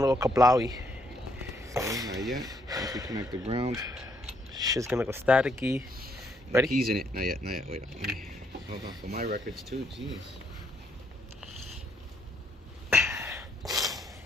kablowy. Not yet. Once we connect the ground. Shit's gonna go staticky. Ready? Keys in it. Not yet, not yet. Wait, let me hold on for my records too. Jeez.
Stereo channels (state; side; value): normal; both; correlation 0.72